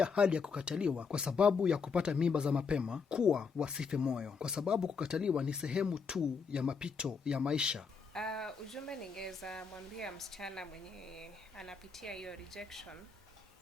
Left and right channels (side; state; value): right; quieter; 5.4 dB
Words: hali ya kukataliwa kwa sababu ya kupata mimba za mapema kuwa wasife moyo, kwa sababu kukataliwa ni sehemu tu ya mapito ya maisha. Ujumbe ningeweza mwambia msichana mwenye anapitia hiyo rejection